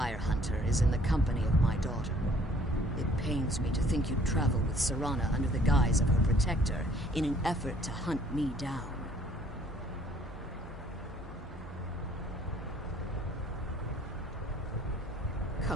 hunter is in the company of my daughter? It pains me to think you'd travel with Serana under the guise of her protector in an effort to hunt me down.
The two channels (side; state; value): both; normal; correlation 0.59